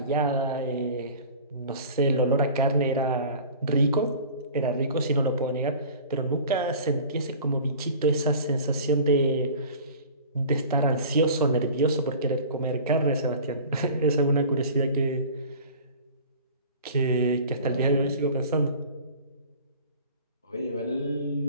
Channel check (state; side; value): inverted; both; correlation -0.42